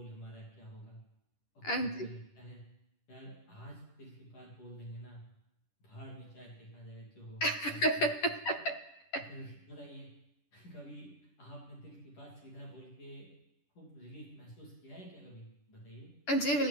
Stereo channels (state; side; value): late; right; 10 ms